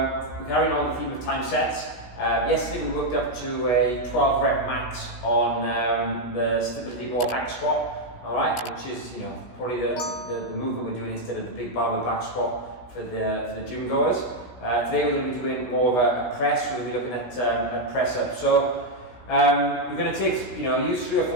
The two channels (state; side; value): late; right; 16 ms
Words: carrying on the theme of time sets. Yesterday we worked up to a 12 rep max on the stability ball hack squat, alright, which is probably the movement we're doing instead of the big barbell back squat for the gym goers. Today we're going to be doing more of a press. We're going to be looking at press up. So we're going to take, use 3 or